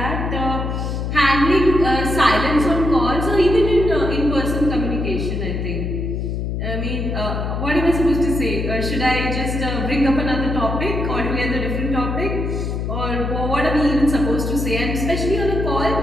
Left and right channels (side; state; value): left; noise; hum, 2 dB below the sound